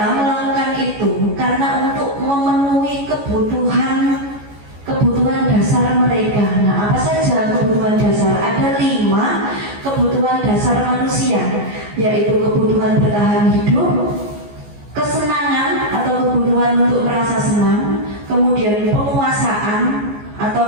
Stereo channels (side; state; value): left; late; 14 ms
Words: melakukan itu karena untuk memenuhi kebutuhan dasar mereka. Nah, apa saja kebutuhan dasar? Ada 5 kebutuhan dasar manusia, yaitu kebutuhan bertahan hidup, kesenangan atau kebutuhan untuk merasa senang, kemudian penguasaan atau